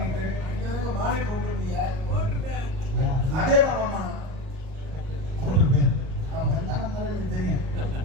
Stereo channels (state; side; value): late; left; 38 ms